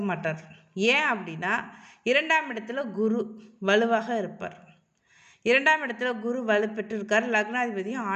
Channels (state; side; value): identical; both; correlation 1.00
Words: மாட்டார். ஏன் அப்படின்னா 2ஆம் இடத்துல குரு வலுவாக இருப்பார். 2ஆம் இடத்துல குரு வலு பெற்று இருக்கார், லக்னாதிபதியும்